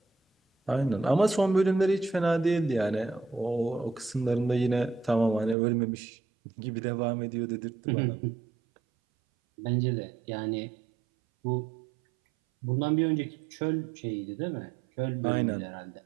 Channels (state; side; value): drops out; left; at 5.6 s